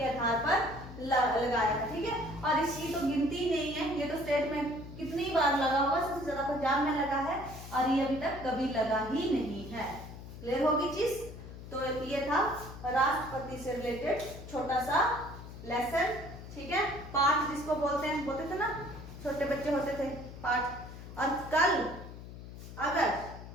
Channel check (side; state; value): left; noise; hum, 13 dB below the sound